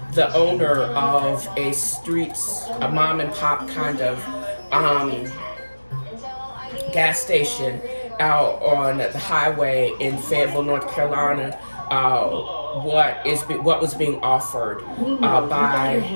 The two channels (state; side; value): inverted; both; correlation -1.00